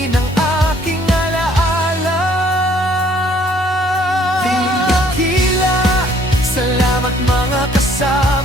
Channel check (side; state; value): both; normal; correlation 0.61